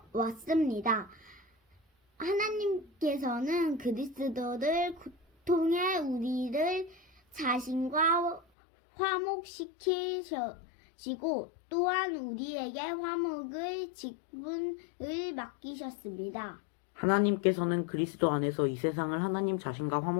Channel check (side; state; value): right; drops out; at 8.4 s